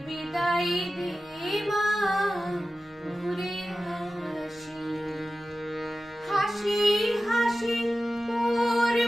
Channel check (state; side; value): normal; both; correlation 0.94